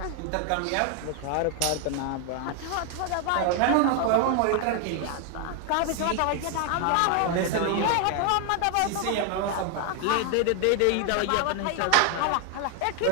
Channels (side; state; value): both; different; correlation 0.01